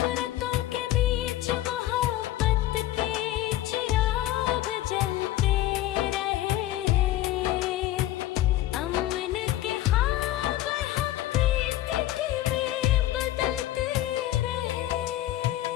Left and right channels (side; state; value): right; quieter; 14.6 dB